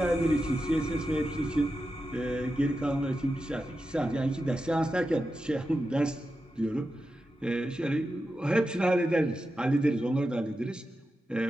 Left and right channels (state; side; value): normal; both; correlation 0.90